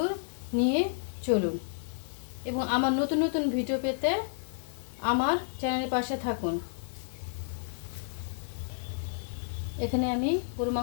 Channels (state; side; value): silent; right; digital silence